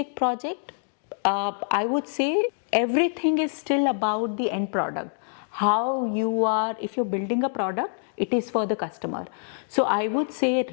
project, I would say everything is still about the end product. How you are, if you're building a product, it is for the customer. So I would say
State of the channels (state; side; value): silent; right; digital silence